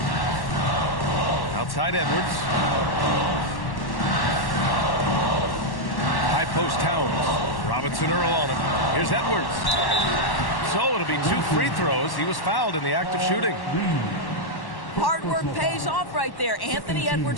Outside Edwards. High post Towns. Robinson Earl on him. Here's Edwards. So it'll be 2 free throws. He was fouled in the act of shooting. Hard work pays off right there. Anthony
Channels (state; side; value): late; right; 1.1 ms